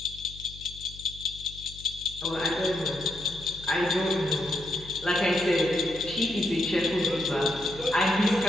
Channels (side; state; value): left; noise; hum, 17 dB below the sound